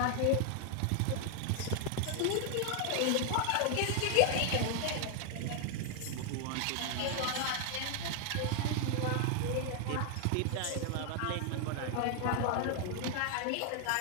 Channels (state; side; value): different; both; correlation 0.00